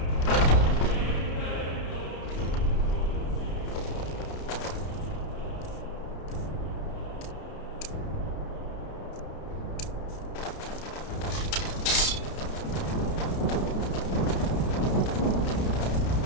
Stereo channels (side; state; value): right; late; 31 ms